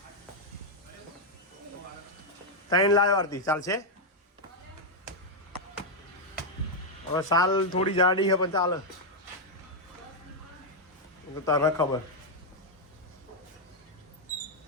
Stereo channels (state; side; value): normal; both; correlation -0.02